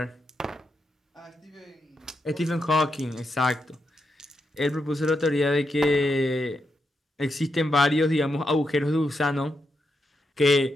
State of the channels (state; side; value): normal; both; correlation 0.84